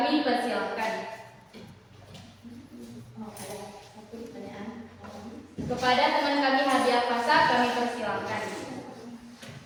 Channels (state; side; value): identical; both; correlation 1.00